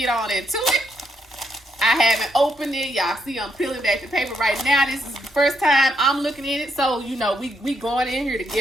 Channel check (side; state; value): both; normal; correlation 0.78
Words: on into it. I haven't opened it. Y'all see I'm peeling back the paper right now. This is the first time I'm looking at it. So, you know, we going in here